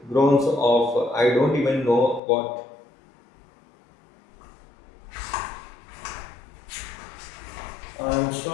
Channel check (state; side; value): drops out; right; at 2.2 s